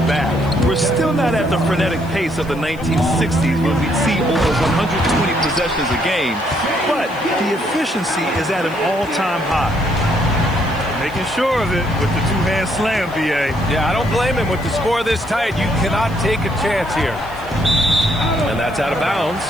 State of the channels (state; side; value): noise; left; hiss, 25 dB below the sound